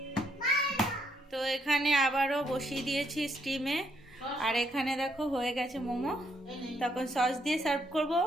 তো এখানে আবারও বসিয়ে দিয়েছি স্টিমে, আর এখানে দেখো হয়ে গেছে মোমো, তখন সস দিয়ে সার্ভ করব।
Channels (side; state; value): both; normal; correlation 0.73